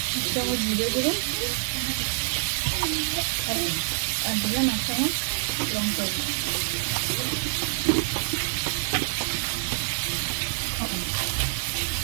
এক চামচ জিরে গুঁড়ো, আর দিলাম এক চামচ লঙ্কা গুঁড়ো।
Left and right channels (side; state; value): left; silent; 61 dB below the other